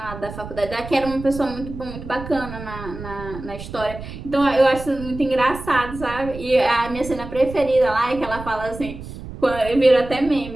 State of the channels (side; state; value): right; noise; rumble, 12 dB below the sound